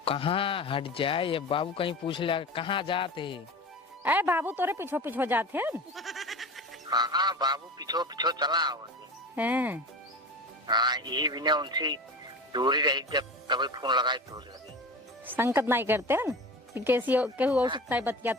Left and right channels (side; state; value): both; normal; correlation 0.31